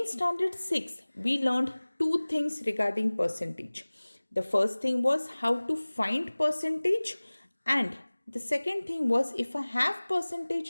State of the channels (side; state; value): both; inverted; correlation -1.00